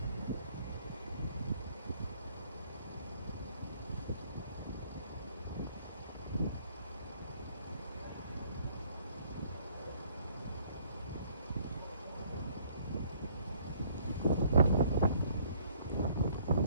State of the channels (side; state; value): both; inverted; correlation -0.61